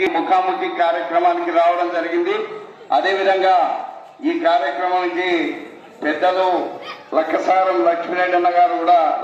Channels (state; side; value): identical; both; correlation 1.00